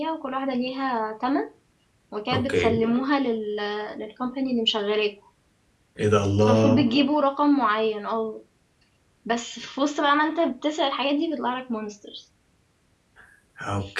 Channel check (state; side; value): identical; both; correlation 1.00